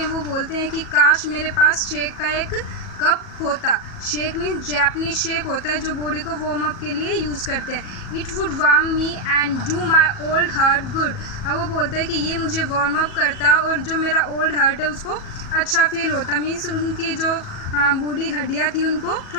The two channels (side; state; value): right; late; 38 ms